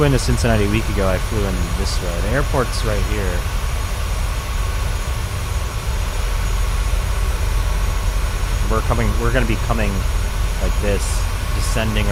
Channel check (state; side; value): identical; both; correlation 1.00